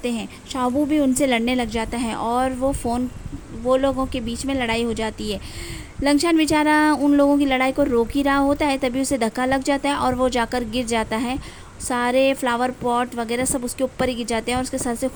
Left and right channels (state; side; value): identical; both; correlation 1.00